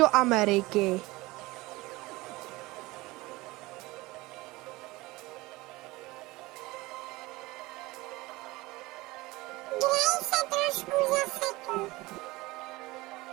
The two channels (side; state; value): left; quieter; 20.9 dB